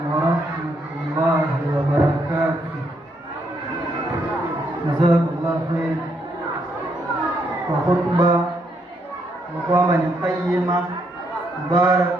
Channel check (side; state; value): both; normal; correlation 0.75